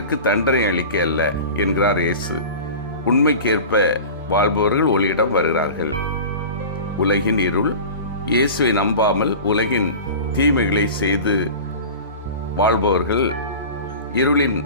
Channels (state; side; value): inverted; both; correlation -0.35